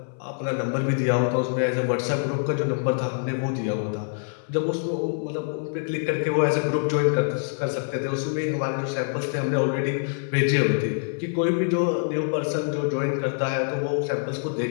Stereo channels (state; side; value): silent; right; 60 dB below the other